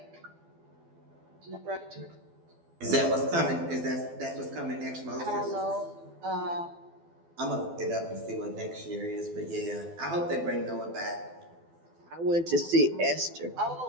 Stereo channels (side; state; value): left; late; 12 ms